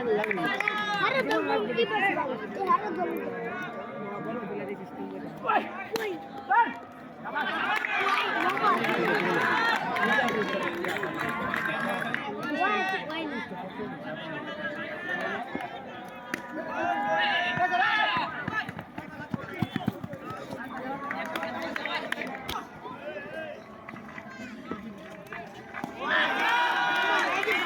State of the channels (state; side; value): identical; both; correlation 1.00